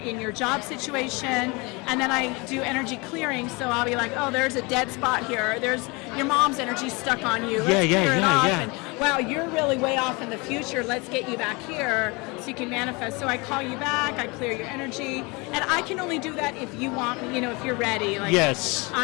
your job situation. And then I do energy clearing, so I'll be like, oh, there's a dead spot here, there's your mom's energy stuck on you, let's clear it off. And wow, you're really way off in the future, let's get you back here so you can manifest. So I call you back, I clear your energy, and I can only do that if you want me, if you're ready. Yes.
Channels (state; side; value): quieter; right; 27.1 dB